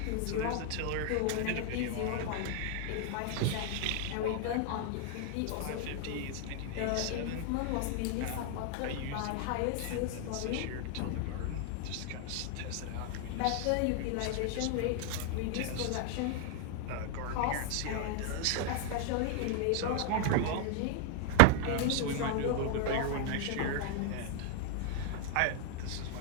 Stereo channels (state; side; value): different; both; correlation 0.00